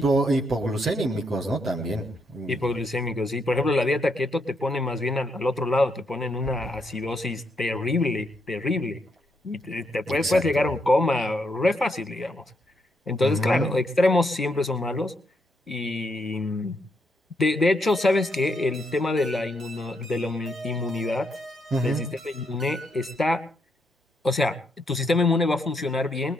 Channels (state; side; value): normal; both; correlation 0.77